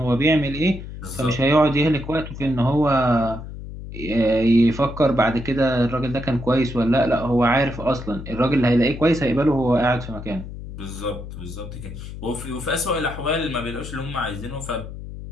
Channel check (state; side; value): noise; left; hum, 11 dB below the sound